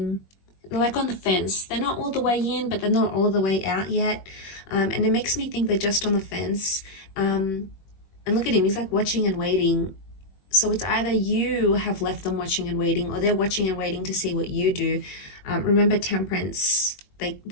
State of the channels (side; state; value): right; late; 21 ms